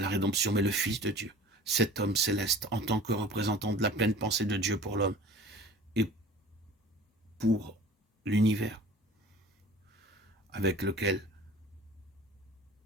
rédemption, mais le Fils de Dieu. Cet homme céleste, en tant que représentant de la pleine pensée de Dieu pour l'homme et pour l'univers avec lequel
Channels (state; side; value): normal; both; correlation 0.43